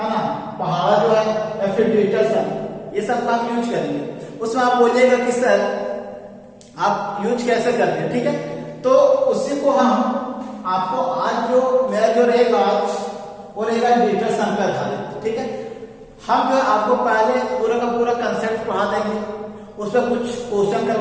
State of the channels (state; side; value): identical; both; correlation 1.00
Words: ना, पहाड़ा जो है, या फिर डिजिटल सम, ये सब का हम यूज करेंगे। उसमें आप बोलिएगा कि सर आप यूज कैसे करते हैं, ठीक है। तो उसी को हम आपको आज जो मेरा जो रहेगा आज वो रहेगा डिजिटल सम पे आधारित, ठीक है। हम जो है आपको पहले पूरा का पूरा कंसेप्ट पढ़ा देंगे, उस पर कुछ क्वेश्चन